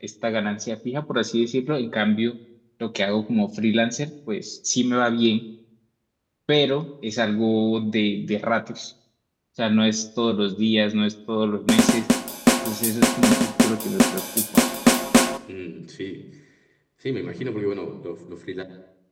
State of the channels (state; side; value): identical; both; correlation 1.00